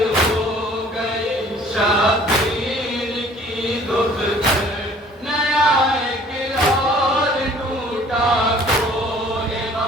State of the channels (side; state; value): both; normal; correlation 0.53